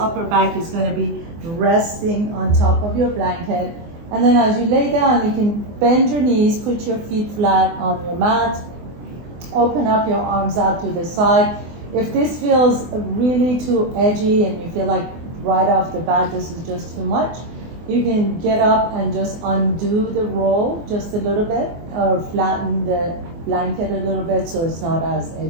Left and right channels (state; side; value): late; left; 24 ms